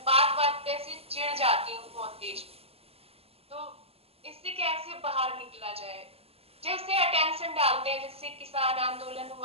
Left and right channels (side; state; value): left; late; 0.28 ms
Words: बात बात पे ऐसे चिढ़ जाती हूँ बहुत तेज। तो इससे कैसे बाहर निकला जाए। जैसे अटेंशन डालते हैं, जैसे किसान आंदोलन